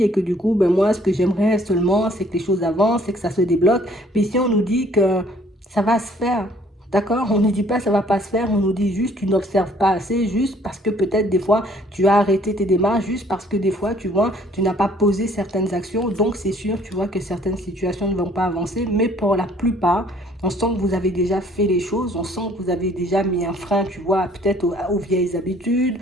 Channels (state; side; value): normal; both; correlation 0.59